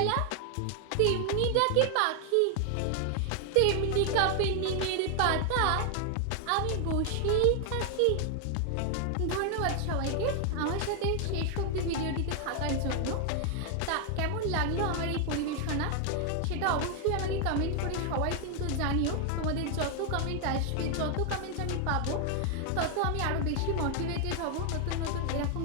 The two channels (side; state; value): both; different; correlation 0.00